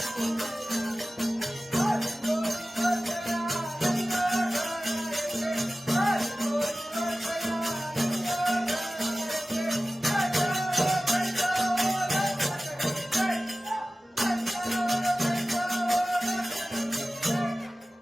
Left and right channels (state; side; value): normal; both; correlation 0.96